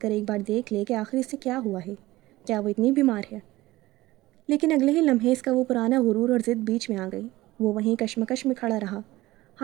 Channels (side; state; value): left; quieter; 18.1 dB